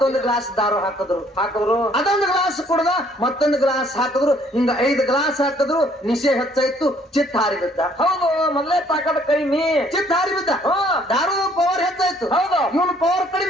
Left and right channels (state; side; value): normal; both; correlation 0.62